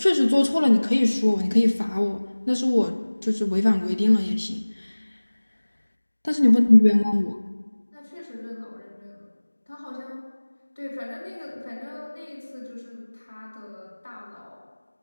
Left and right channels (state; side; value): inverted; both; correlation -1.00